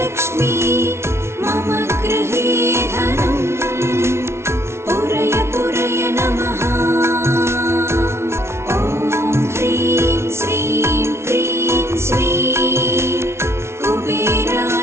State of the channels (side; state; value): left; late; 0.13 ms